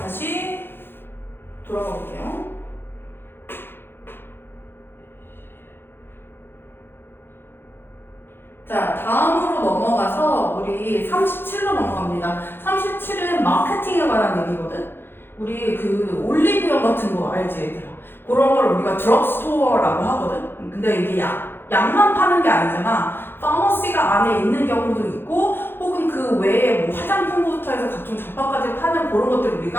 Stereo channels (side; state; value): right; late; 0.10 ms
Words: 다시 돌아가 볼게요. 자, 다음으로 넘어가서 우리 37로 넘어갑니다. 37은 마케팅에 관한 얘기거든. 우리 그 올리브영 같은 거 알지, 얘들아? 그런 걸 우리가 드럭스토어라고 하거든. 근데 이게 약만 파는 게 아니잖아. 파머시가 안에 있는 경우도 있고, 혹은 그 외에 뭐 화장품부터 해서 각종 잡화까지 파는 그런 것들을